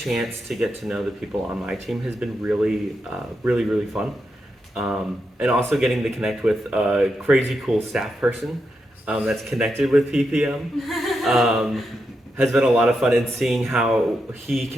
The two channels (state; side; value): normal; both; correlation 0.85